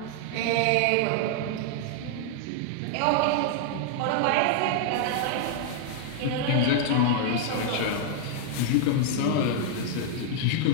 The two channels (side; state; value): both; different; correlation 0.00